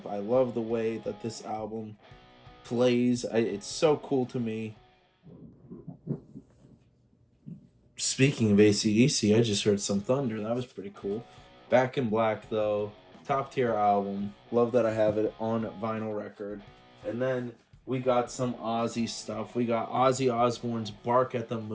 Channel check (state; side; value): identical; both; correlation 1.00